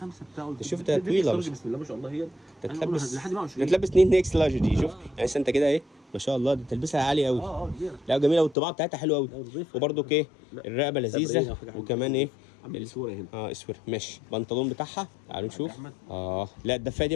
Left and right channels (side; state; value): right; drops out; at 8.6 s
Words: شوف ده طويله بسم الله ما شاء الله. هي تلبس 2 اكس لارج دي. شوف يعني انت كده ايه، ما شاء الله، دي تلبسها عالي قوي. لا جميله، والطباعه بتاعتها حلوه قوي. وبرده ايه، الرقبه لذيذه، وكمان ايه الاسوره هنا. اسوره. ماشي، البنطلون بتاعها تعالوا نشوف. لا الدفايه دي